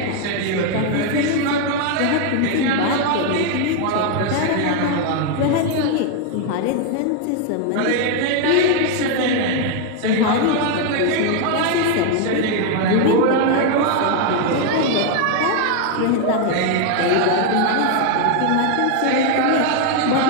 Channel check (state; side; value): different; both; correlation 0.01